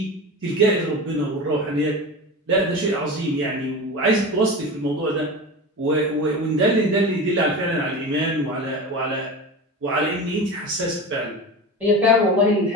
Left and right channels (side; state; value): both; normal; correlation 0.28